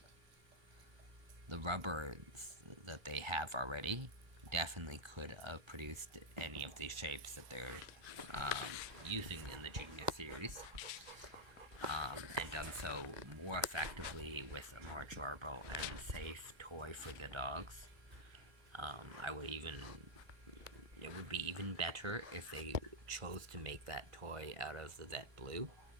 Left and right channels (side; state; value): left; late; 1.3 ms